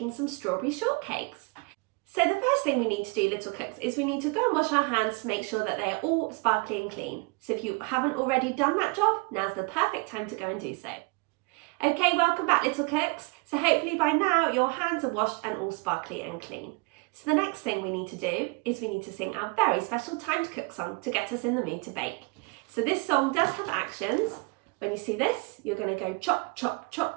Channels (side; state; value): left; quieter; 30.2 dB